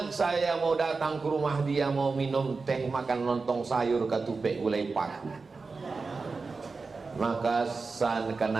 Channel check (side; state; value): left; quieter; 4.3 dB